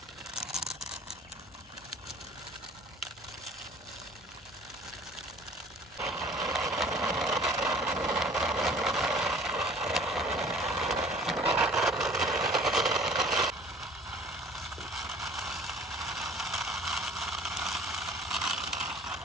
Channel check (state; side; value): normal; both; correlation 0.51